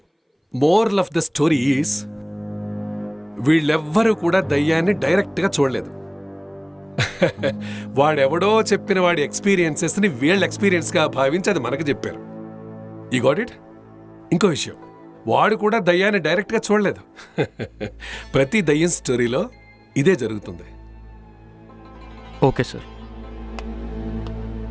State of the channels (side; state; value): both; identical; correlation 1.00